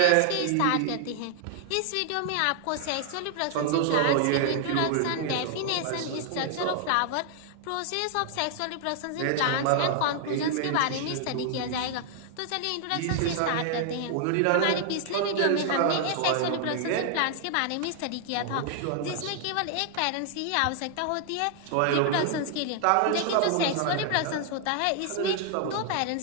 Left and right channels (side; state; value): both; different; correlation 0.00